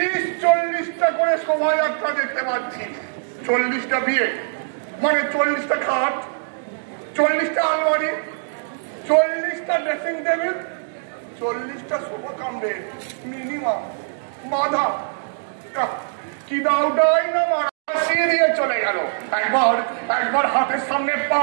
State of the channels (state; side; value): silent; left; digital silence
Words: করে শোভাযাত্রা দেখতে পাচ্ছি। 40টা বিয়ে মানে 40টা খাট, 40টা আলমারি, 40টা ড্রেসিং টেবিল, 40টা সোফা কাম বেড মিনিমাম। বাধা কি দাওটাই না মারা দিয়ে চলে গেল। একবার হাতের সামনে